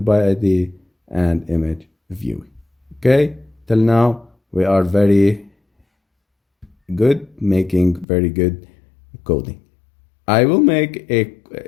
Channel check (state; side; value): drops out; right; at 8.1 s